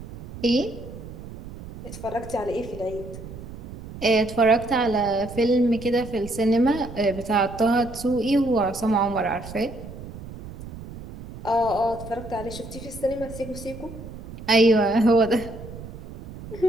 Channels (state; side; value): noise; right; rumble, 13 dB below the sound